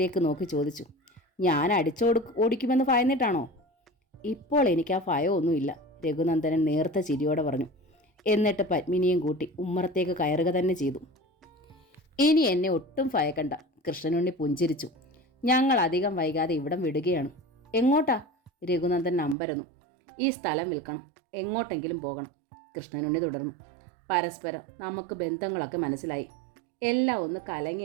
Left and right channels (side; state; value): left; drops out; at 19.4 s